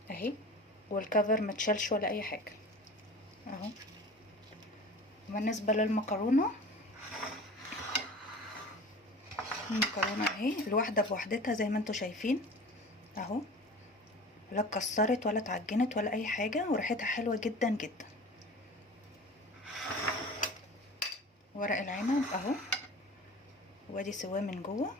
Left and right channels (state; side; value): normal; both; correlation 0.39